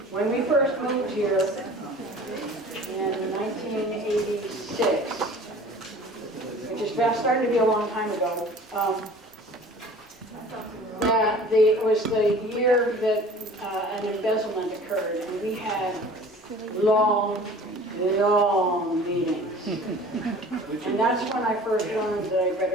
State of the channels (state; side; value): normal; both; correlation 0.45